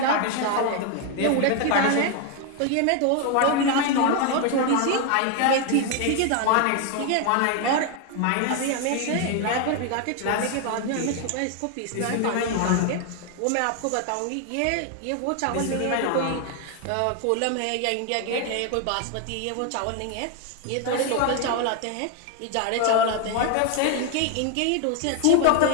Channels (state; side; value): different; both; correlation 0.01